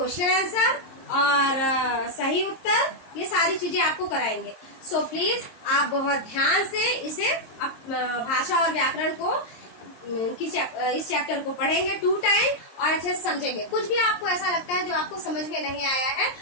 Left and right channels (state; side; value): late; right; 23 ms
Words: आंसर और सही उत्तर, ये सारी चीजें आपको कराएंगे। सो प्लीज आप बहुत ध्यान से इसे भाषा और व्याकरण को इस चैप्टर को पढ़ेंगे 2 टाइम और अच्छे से समझेंगे। कुछ भी आपको ऐसा लगता है जो आपको समझ में नहीं आया है,